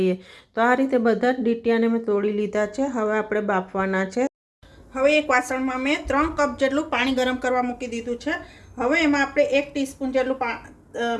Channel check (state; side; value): identical; both; correlation 1.00